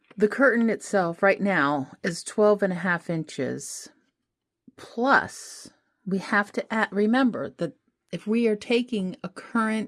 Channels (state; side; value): identical; both; correlation 1.00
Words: The curtain itself right now is 12.5 inches. Plus, we have to remember that if we are taking a